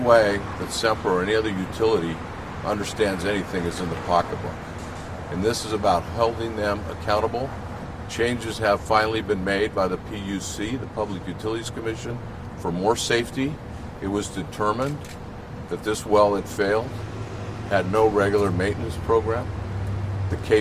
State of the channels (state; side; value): identical; both; correlation 1.00